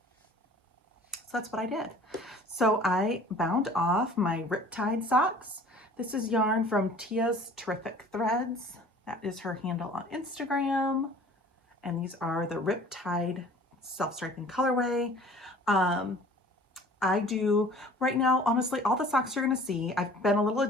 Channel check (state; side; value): normal; both; correlation 0.48